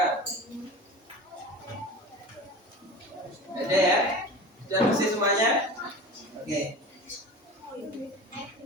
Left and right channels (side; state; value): both; normal; correlation 0.34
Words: Ada ya? Sudah bersih semuanya? Oke.